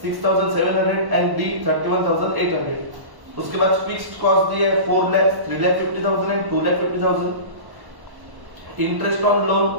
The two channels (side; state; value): left; late; 1.1 ms